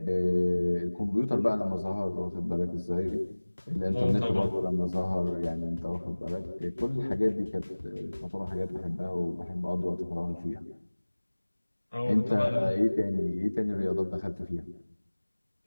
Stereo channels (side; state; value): both; inverted; correlation -1.00